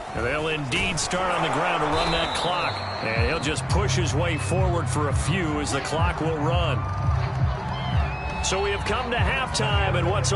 They'll indeed start on the ground to run that clock. And he'll just push his way forward for a few as the clock will run. So we have come to halftime in what's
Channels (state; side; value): identical; both; correlation 1.00